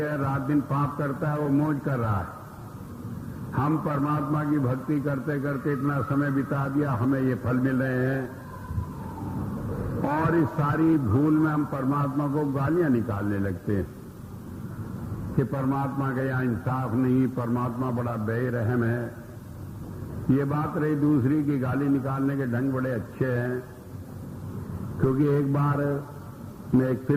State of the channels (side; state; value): both; identical; correlation 1.00